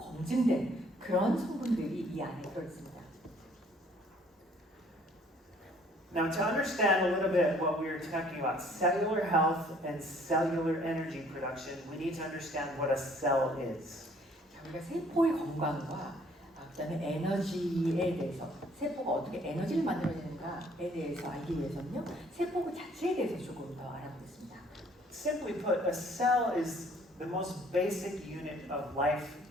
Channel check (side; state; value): both; normal; correlation 0.59